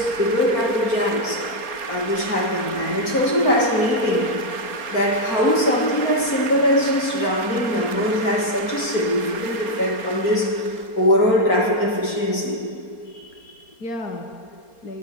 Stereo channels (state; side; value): late; right; 4.3 ms